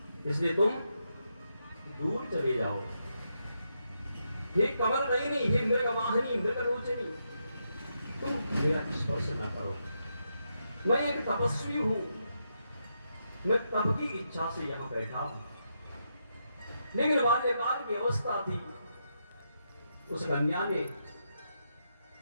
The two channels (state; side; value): inverted; both; correlation -0.82